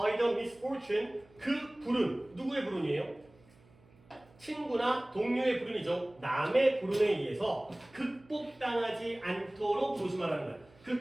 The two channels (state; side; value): noise; right; hum, 28 dB below the sound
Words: the misfortune. 그 불운, 누구의 불운이에요? 친구나 동료의 불운이죠. 남의 불운에 의해서 극복당하지 않도록 조심하라는 거야.